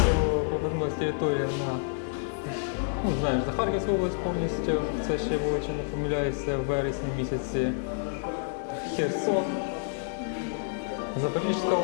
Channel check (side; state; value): right; silent; digital silence